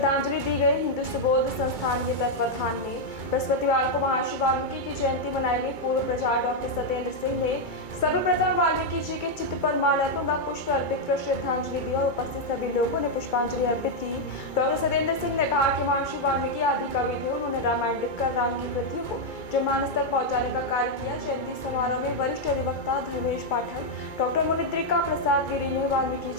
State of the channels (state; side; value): late; right; 2.3 ms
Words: दी गई। हिंदू सुबोध संस्थान के तत्वाधान में बृहस्पतिवार को महर्षि वाल्मीकि की जयंती मनाई गई। पूर्व प्रचार डॉक्टर सत्येंद्र सिंह ने सर्वप्रथम वाल्मीकि जी के चित्र पर माल्यार्पण व पुष्प अर्पित कर श्रद्धांजलि दी और उपस्थित सभी लोगों ने पुष्पांजलि अर्पित की। डॉक्टर सत्येंद्र सिंह ने कहा कि महर्षि वाल्मीकि आदि कवि थे। उन्होंने रामायण लिखकर राम की कृतियों को जनमानस तक पहुंचाने का कार्य किया। जयंती समारोह में वरिष्ठ अधिवक्ता धर्मेश पाठक, डॉक्टर मुनिद्रिका प्रसाद गिरी ने वाल्मीकि